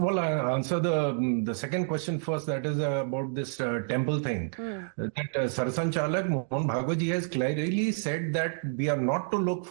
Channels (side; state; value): left; silent; digital silence